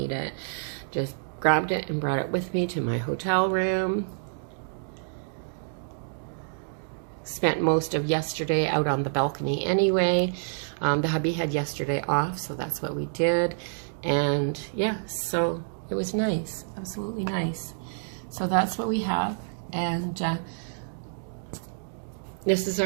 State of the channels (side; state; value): left; silent; digital silence